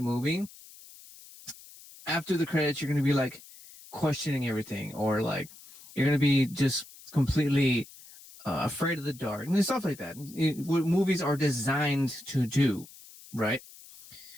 after the credits, you're going to be like questioning everything, or like you're going to be just completely afraid of the dark, and stuff like that. What movies are designed to do, right?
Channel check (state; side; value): noise; left; hiss, 20 dB below the sound